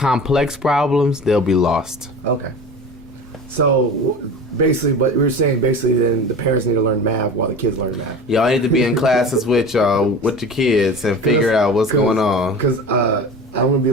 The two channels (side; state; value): both; normal; correlation 0.34